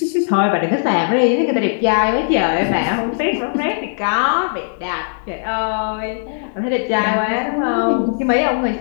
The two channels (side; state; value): right; silent; digital silence